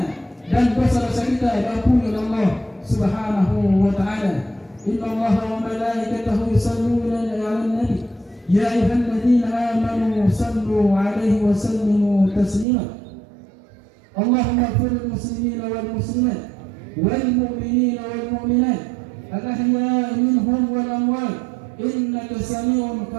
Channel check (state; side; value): drops out; left; at 12.7 s